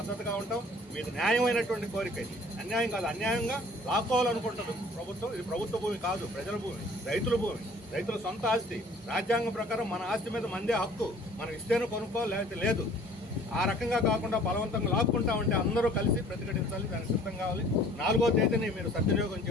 ఉంటాం. మీది న్యాయమైనటువంటి కోరిక, ఇది అన్యాయం కాదు. అన్యాయంగా లాక్కోవాలనుకుంటుంది ప్రభుత్వం. ఇది ప్రభుత్వ భూమి కాదు, ప్రజల భూమి, రైతుల భూమి, రైతుల సొంత ఆస్తి. రాజ్యాంగం ప్రకారం మన ఆస్తి మీద మందే హక్కు. మనం ఇస్తేనే కొనుక్కోవాలి, లేకపోతే లేదు. ఆ రకంగా కాకుండా బలవంతంగా లాక్కుంటామంటే అందరూ కలిసి ప్రతిఘటించాలి, దానికి సిద్ధం కావాలి. 4వ తేదీని మీరు సద్వినియోగం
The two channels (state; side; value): normal; both; correlation 0.52